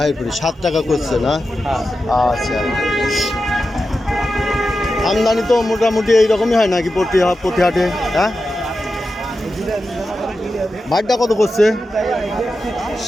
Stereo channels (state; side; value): normal; both; correlation 0.91